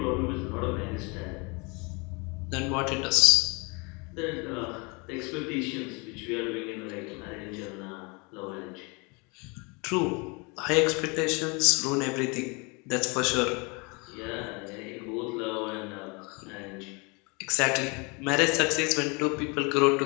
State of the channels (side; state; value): right; quieter; 29.8 dB